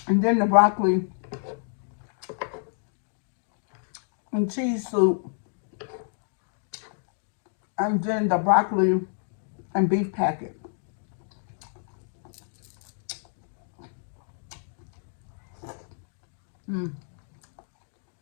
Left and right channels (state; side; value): silent; right; 59 dB below the other